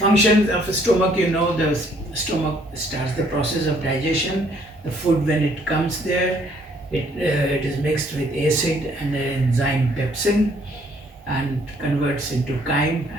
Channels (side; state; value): both; normal; correlation 0.64